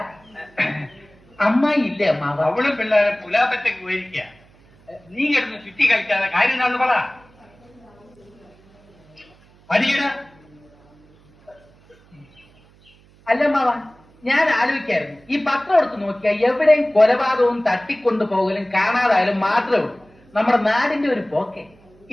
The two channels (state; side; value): noise; right; hum, 29 dB below the sound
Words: അമ്മായി ഇല്ലേ അമ്മാവ? അവളും പിള്ളേരെ പുലാപ്പറ്റയ്ക്ക് പോയിരിക്കുക. നീ കിടന്ന് ചുറ്റി കളിക്കാതെ കാര്യം എന്താണെന്ന് പറ. അല്ല അമ്മാവ, ഞാൻ ആലോചിക്കായിരുന്നു, ഈ പത്രം എടുത്ത് നോക്കിയാൽ എവിടെയും കൊലപാതകവും തട്ടിക്കൊണ്ടു പോകലും കാണാതായാലും മാത്രമേ ഉള്ളൂ. നമ്മുടെ നാടിന്റെ ഒരു പോക്കെ.